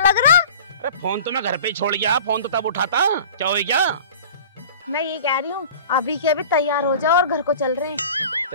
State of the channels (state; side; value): inverted; both; correlation -0.41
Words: रहा। अरे फोन तो मैं घर पे ही छोड़ गया, फोन तो तब उठाता। क्या हो गया? मैं ये कह रही हूँ अभी के अभी तैयार हो जाओ और घर को चल रहे हैं।